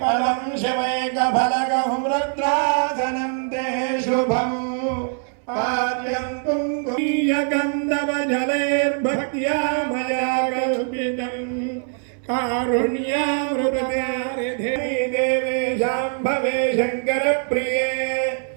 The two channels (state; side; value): silent; left; 57 dB below the other